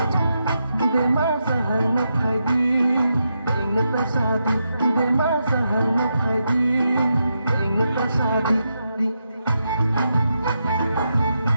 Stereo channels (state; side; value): inverted; both; correlation -0.84